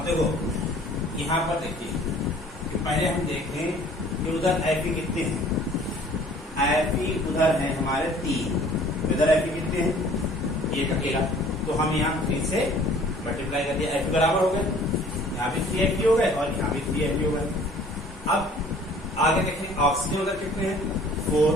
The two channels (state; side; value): normal; both; correlation 0.52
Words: देखो यहाँ पर देखिए कि पहले हम देखें कि उधर Fe कितने हैं, Fe उधर है हमारे 3, इधर Fe कितने हैं, एक अकेला, तो हम यहाँ 3 से मल्टीप्लाई कर दिया, Fe बराबर हो गए, यहाँ भी 3 Fe हो गए और यहाँ भी 3 Fe हो गए। अब आगे देखें ऑक्सीजन उधर कितने हैं 4,